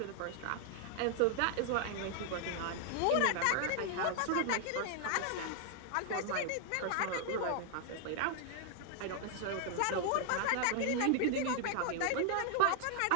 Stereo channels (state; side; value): different; both; correlation 0.00